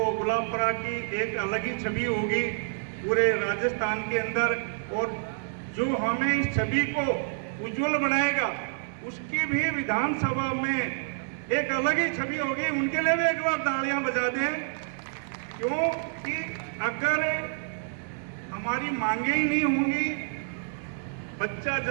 गुलाबपुरा की एक अलग ही छवि होगी पूरे राजस्थान के अंदर, और जो हमें इस छवि को उज्जवल बनाएगा उसकी भी विधानसभा में एक अलग ही छवि होगी। उनके लिए भी एक बार तालियां बजा दें, क्योंकि अगर हमारी मांगे ही नहीं होंगी, बच्चा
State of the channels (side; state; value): left; silent; 59 dB below the other